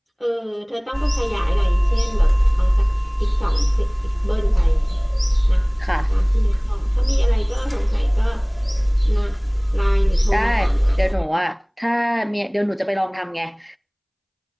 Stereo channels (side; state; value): both; identical; correlation 1.00